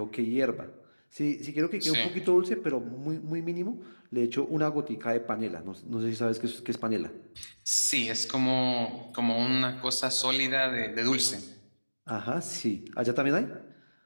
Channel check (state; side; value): inverted; both; correlation -1.00